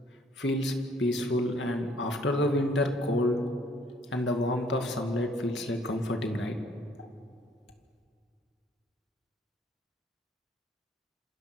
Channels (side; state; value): both; normal; correlation 0.62